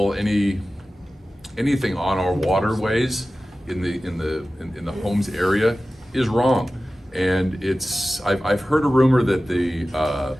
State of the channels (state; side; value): normal; both; correlation 0.96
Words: any anything on our waterways in the homes area is wrong. And I've heard a rumor that